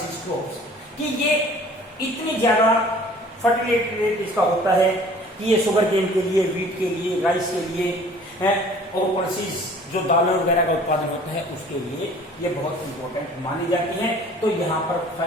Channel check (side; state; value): both; normal; correlation 0.50